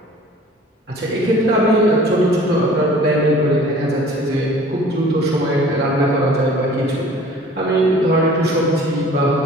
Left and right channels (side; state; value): both; normal; correlation 0.49